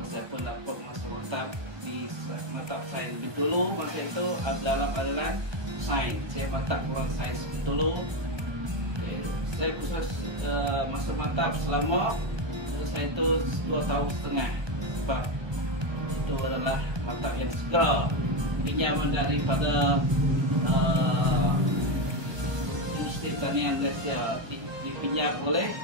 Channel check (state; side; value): late; left; 1.2 ms